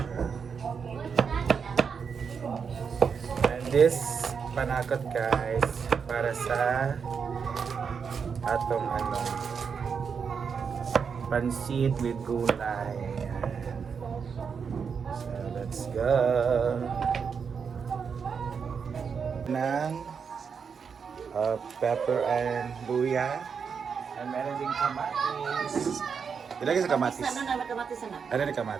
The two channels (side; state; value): left; quieter; 6.2 dB